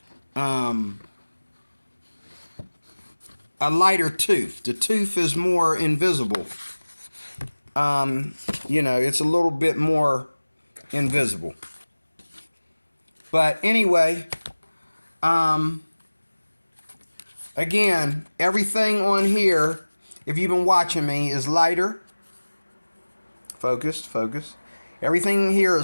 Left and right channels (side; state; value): both; inverted; correlation -1.00